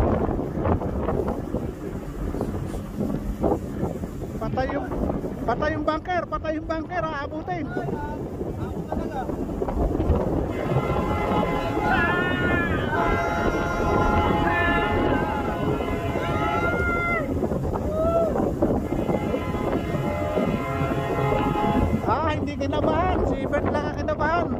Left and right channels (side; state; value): both; identical; correlation 1.00